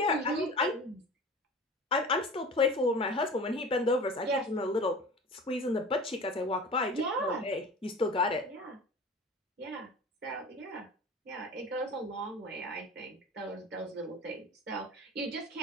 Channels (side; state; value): both; normal; correlation 0.38